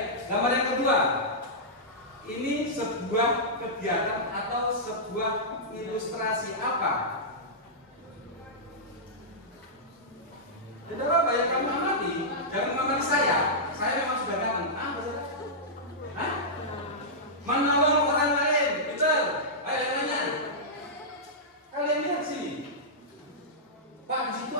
gambar yang kedua. Ini sebuah kegiatan atau sebuah ilustrasi apa? Tidak apa yang kamu amati, jangan mengamati saya. Saya memang sudah datang. Hah? Menolong orang lain, betul? Ayo yang nanya. Kalian lihat sini. Pak, di situ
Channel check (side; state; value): both; normal; correlation -0.13